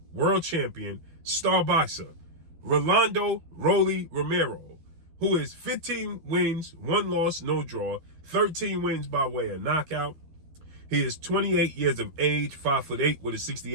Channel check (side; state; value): left; late; 12 ms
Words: World Champion, star boxer, Rolando Rolly Romero, who is 15 wins, 1 loss, no draw, 13 wins by way of knockout. He is 28 years of age, 5'8" with a